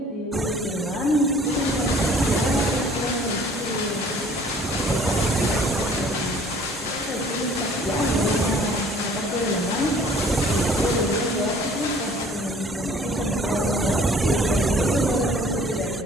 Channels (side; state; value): both; normal; correlation 0.54